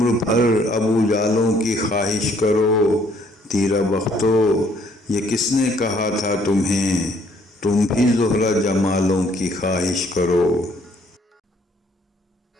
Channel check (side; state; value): both; normal; correlation 0.64